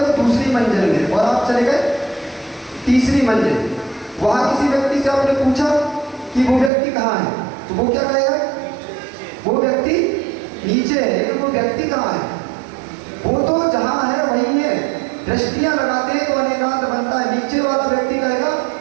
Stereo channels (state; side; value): drops out; left; at 6.7 s